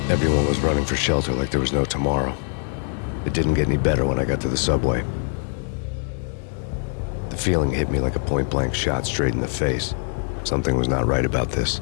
Everyone was running for shelter like there was no tomorrow. It didn't get any better when I got to the subway. The feeling hit me like a point-blank shot straight in the face. Something was not right about this.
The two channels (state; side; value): silent; right; 55 dB below the other